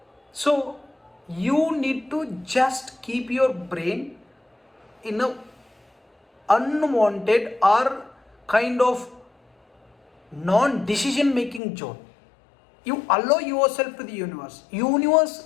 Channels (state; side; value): drops out; right; at 11.6 s